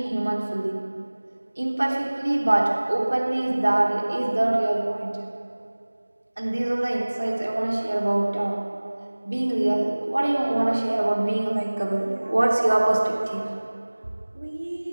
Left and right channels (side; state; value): both; inverted; correlation -1.00